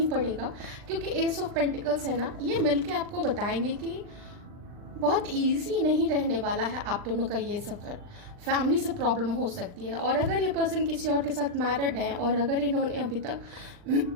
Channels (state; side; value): late; left; 40 ms